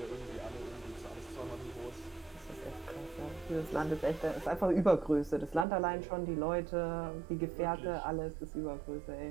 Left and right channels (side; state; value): left; drops out; at 5.7 s